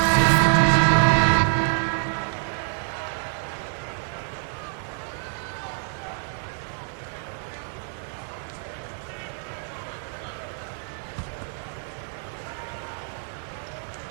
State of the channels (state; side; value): silent; left; 57 dB below the other